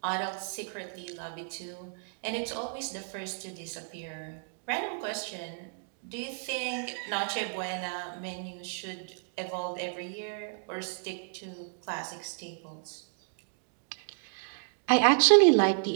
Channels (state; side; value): silent; left; 56 dB below the other